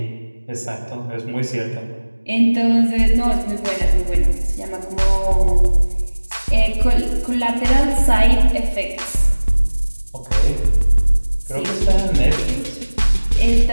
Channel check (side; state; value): both; inverted; correlation -1.00